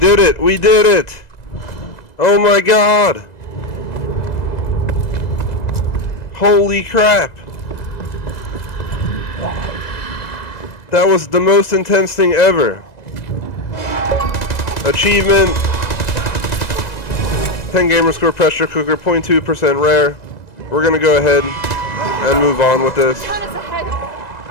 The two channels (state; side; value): late; right; 2.0 ms